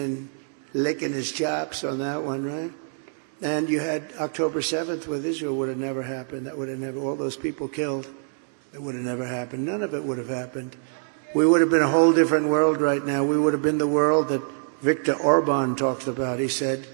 licking his chops on that one, right? And you had October 7th with Israel. Would have never happened. That would have never, all those people killed, that would have never happened. None of it would have happened. We would have been a whole different world right now. We would have been the world that Viktor Orban talks about. He said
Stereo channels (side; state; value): left; silent; 62 dB below the other